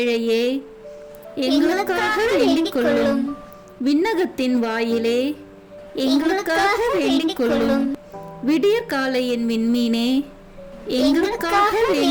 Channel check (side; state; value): both; identical; correlation 1.00